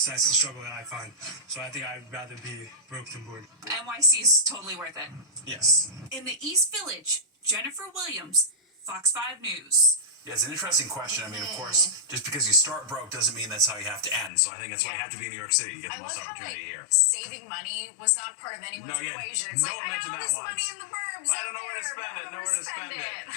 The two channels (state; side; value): drops out; right; at 14.3 s